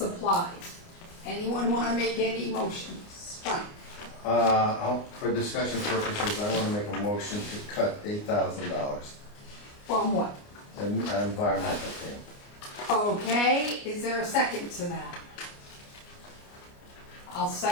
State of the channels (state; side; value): late; right; 29 ms